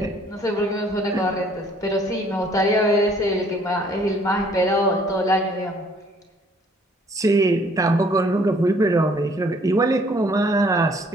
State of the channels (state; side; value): normal; both; correlation 0.60